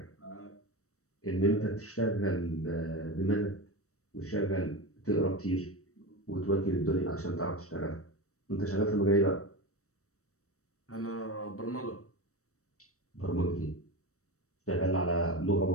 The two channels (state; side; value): late; right; 0.65 ms